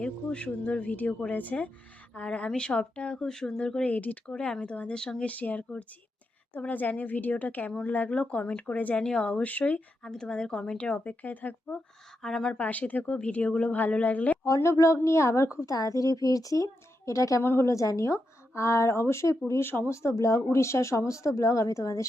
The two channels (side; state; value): both; normal; correlation 0.86